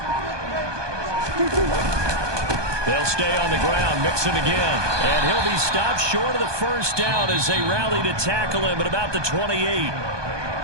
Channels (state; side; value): late; left; 1.2 ms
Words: They'll stay on the ground. Mixon again. And he'll be stopped short of the 1st down as they rally to tackle him at about the 28.